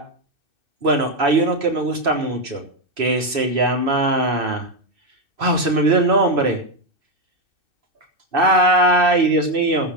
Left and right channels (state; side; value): late; left; 2.6 ms